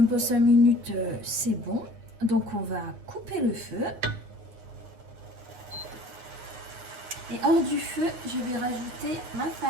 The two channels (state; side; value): late; left; 9.5 ms